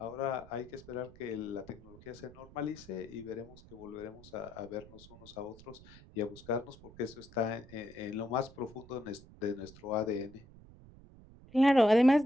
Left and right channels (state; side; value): noise; right; rumble, 21 dB below the sound